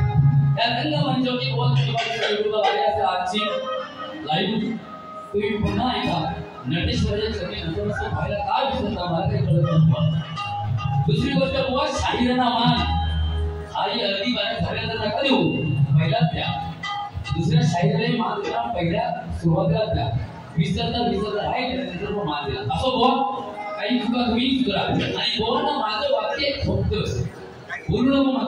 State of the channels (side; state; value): both; identical; correlation 1.00